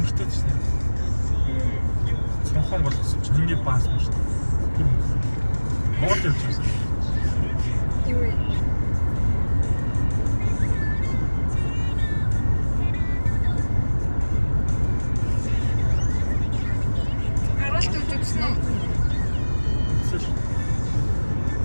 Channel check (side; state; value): both; inverted; correlation -1.00